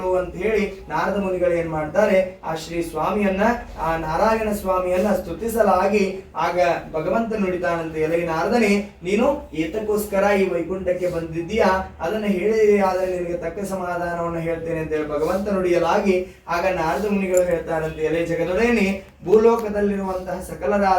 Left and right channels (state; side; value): identical; both; correlation 1.00